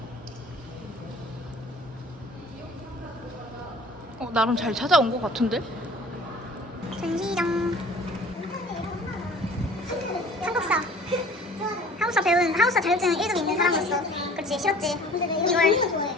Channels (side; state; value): both; normal; correlation 0.48